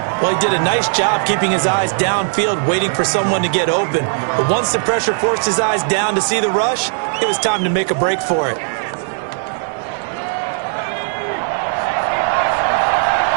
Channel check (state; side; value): silent; left; 65 dB below the other